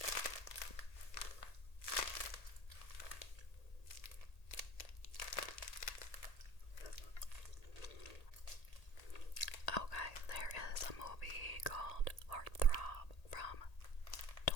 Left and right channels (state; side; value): late; right; 1.8 ms